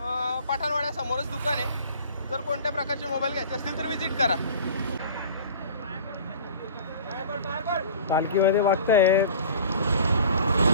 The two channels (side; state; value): both; inverted; correlation -0.43